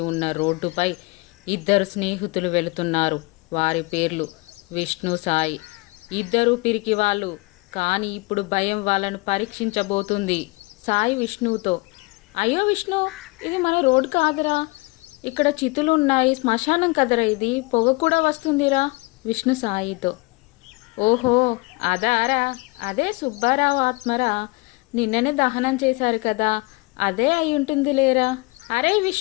ఉన్న రోడ్డుపై ఇద్దరు స్నేహితులు వెళుతున్నారు. వారి పేర్లు విష్ణు, సాయి. ఇద్దరూ పిరికి వాళ్ళు, కానీ ఇప్పుడు భయం వాళ్ళను పరీక్షించబోతుంది. సాయి విష్ణువుతో, అయ్యో విష్ణు, ఇది మన రోడ్ కాదురా, ఇక్కడ చితులు ఉన్నాయి, శ్మశానం కదరా, ఇది పొగ కూడా వస్తుందిరా. విష్ణు సాయితో, ఓహో అదారా, అదే సుబ్బారావు ఆత్మరా, నిన్ననే దహనం చేశారు కదా, అదే అయి ఉంటుంది లేరా. అరే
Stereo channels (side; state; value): right; quieter; 26.0 dB